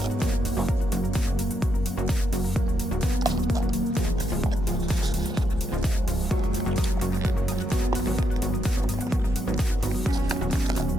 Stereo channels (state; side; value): normal; both; correlation 0.80